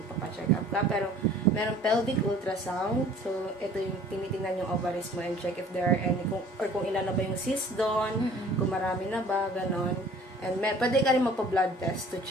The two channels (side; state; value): both; normal; correlation 0.50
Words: up ka. Pero, meron pelvic ultrasound. So, ito yung tinitingnan yung ovaries mo and check if there are any, kung ilan na ba yung cyst doon, kung marami na ba, ganon. And pwede ka rin magpa-blood test to